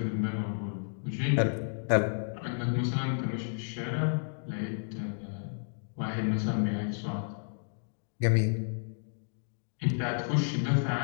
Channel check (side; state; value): right; silent; digital silence